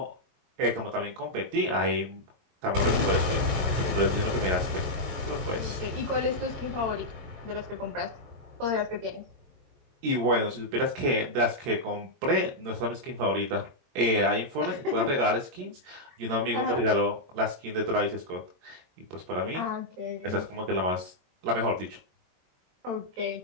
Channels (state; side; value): late; left; 22 ms